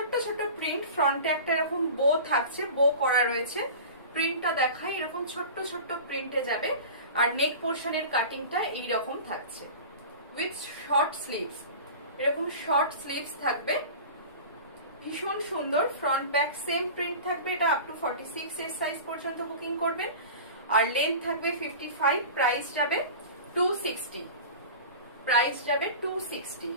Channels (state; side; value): inverted; both; correlation -0.35